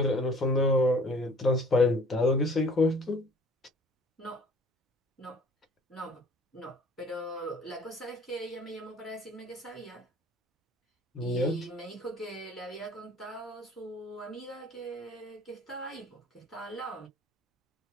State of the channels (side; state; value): both; normal; correlation 0.51